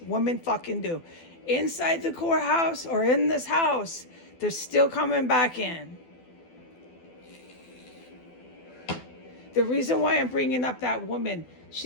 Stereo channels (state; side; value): late; right; 12 ms